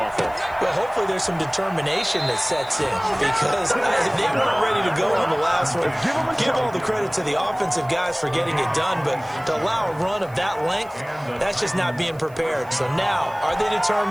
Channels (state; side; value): noise; right; hiss, 27 dB below the sound